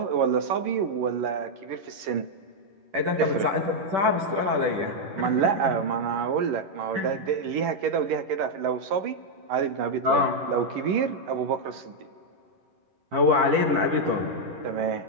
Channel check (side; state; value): left; late; 11 ms